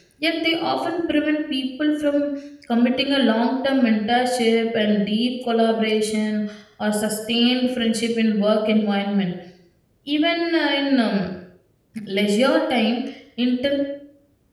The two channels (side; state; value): both; identical; correlation 1.00